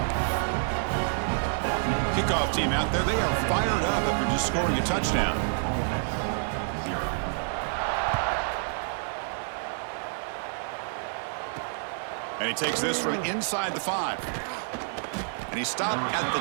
Kickoff team out there. They are fired up after just scoring a touchdown. And he takes this from inside the 5. And he stopped at the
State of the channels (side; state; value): left; silent; 55 dB below the other